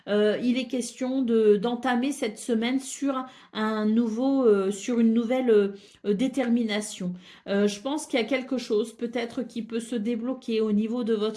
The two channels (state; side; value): identical; both; correlation 1.00